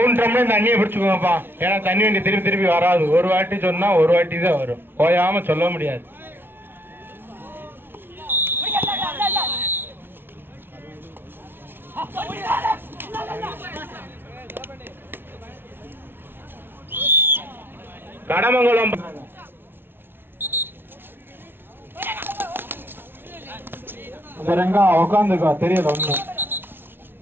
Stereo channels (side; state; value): left; late; 0.11 ms